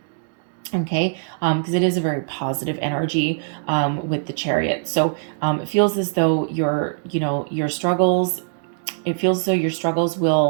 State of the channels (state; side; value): silent; left; digital silence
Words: okay, because it is a very positive energy with the Chariot. So it feels as though your struggles,